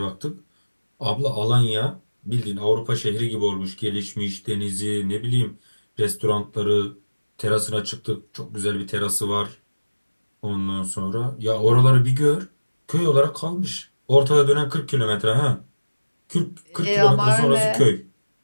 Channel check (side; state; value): both; inverted; correlation -1.00